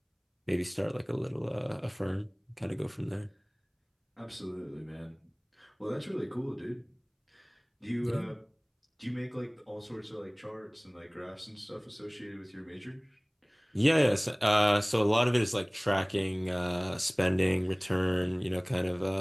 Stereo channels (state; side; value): identical; both; correlation 1.00